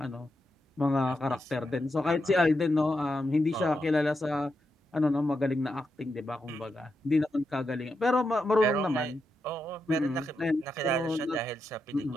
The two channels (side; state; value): both; normal; correlation 0.85